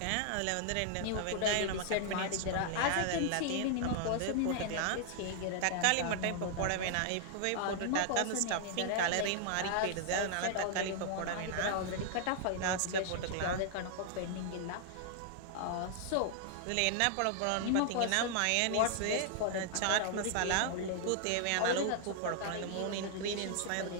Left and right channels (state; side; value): different; both; correlation -0.01